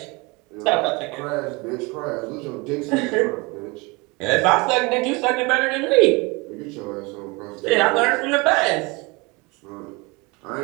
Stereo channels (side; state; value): left; quieter; 26.0 dB